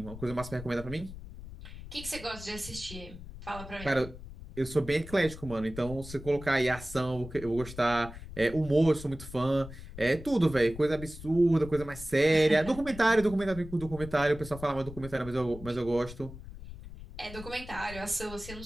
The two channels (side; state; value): left; noise; rumble, 13 dB below the sound